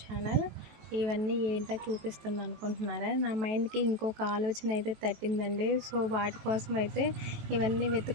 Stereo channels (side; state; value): left; late; 18 ms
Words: channel. ఇవన్నీ ఏంటో చూపిస్తుంది అనుకుంటున్నారా? నా మైండ్కి ఇంకొక ఆలోచన అయితే తట్టిందండి. సో వాటి కోసం అయితే ఇవన్నీ